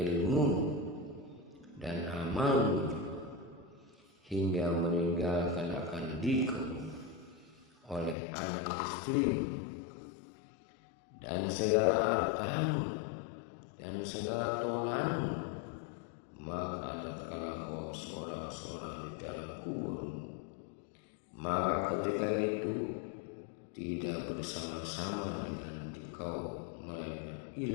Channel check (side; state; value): right; drops out; at 8.2 s